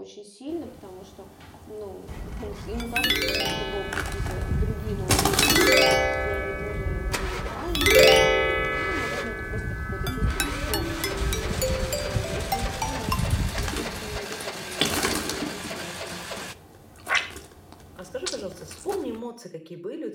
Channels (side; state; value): both; identical; correlation 1.00